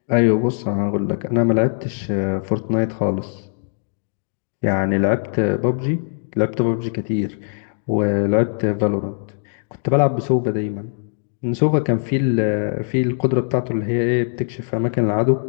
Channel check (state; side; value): silent; right; 65 dB below the other